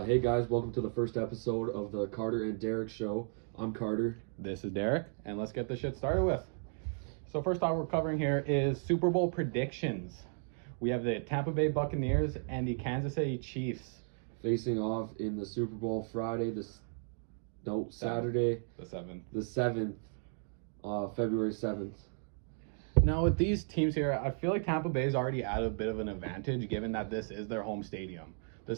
guys, welcome to the first episode of the Carter and Derek show. I'm Carter. This is Derek, and let's get this shit started with. So first off, we're covering here is Super Bowl predictions. We have the Tampa Bay Buccaneers and the Kansas City Chiefs. Facing off in the Super Bowl Saturday, The 7th. the 7th, February 7th. Now with these teams here, I feel like Tampa Bay's already at a bit of an advantage given that this is their home stadium.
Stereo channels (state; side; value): silent; left; 55 dB below the other